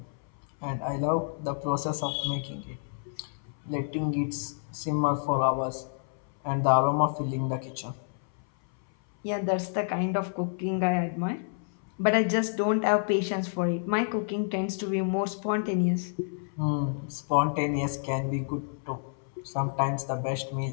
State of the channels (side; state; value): right; silent; 58 dB below the other